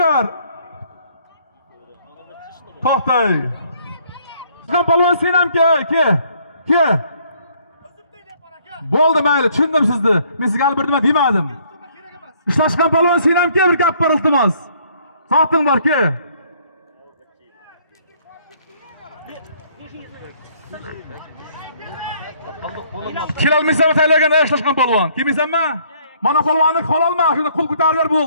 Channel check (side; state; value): both; inverted; correlation -0.63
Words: ber. To'xtay. Sizlar polvon sen ham ke. Bo'ldi mayli, tushundim sizni. Men sizga hali bir nima demadim. Ishlashgan polvon sen ham ke, bir gap bor iltimos. Soating bor ke. Kelolmaysan taylagan ishlashgan polvon. Kelmaysanmi? Mana polvonni qololma, shunda qo'l ko'tarib ber